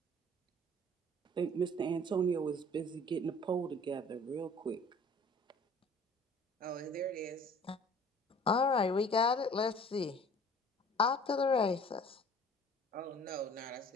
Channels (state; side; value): normal; both; correlation 0.49